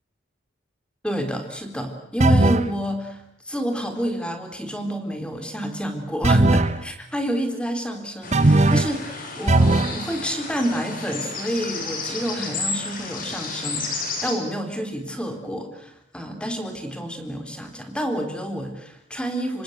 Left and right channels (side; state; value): both; normal; correlation 0.73